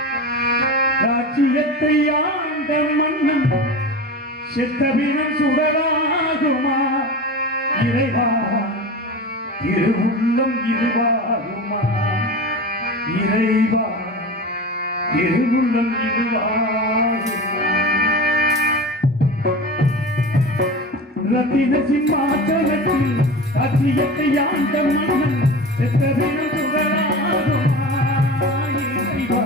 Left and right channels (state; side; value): normal; both; correlation 0.30